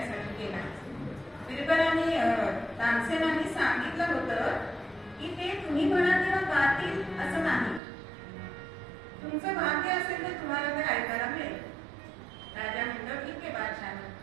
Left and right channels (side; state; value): left; drops out; at 7.8 s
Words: गेला. बिरबलाने तानसेनांनी सांगितलं होतं की ते तुम्ही म्हणा तेव्हा गातील असं नाही, तुमचं भाग्य असेल तर तुम्हाला ते ऐकायला मिळेल. राजा म्हणतो ठीक आहे बादशाह.